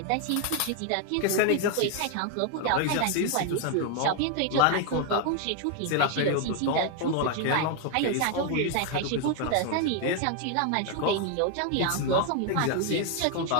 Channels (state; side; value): different; both; correlation 0.00